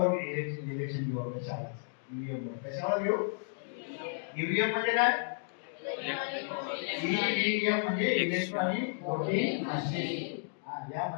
इलेक्शन घेऊ. आपल्या शाळेत ईव्हीएम वर कशावर घेऊ? ईव्हीएम म्हणजे काय? ईव्हीएम म्हणजे इलेक्ट्रॉनिक वोटिंग मशीन. या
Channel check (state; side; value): silent; right; digital silence